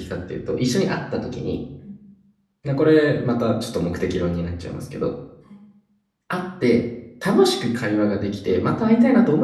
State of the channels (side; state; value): both; identical; correlation 1.00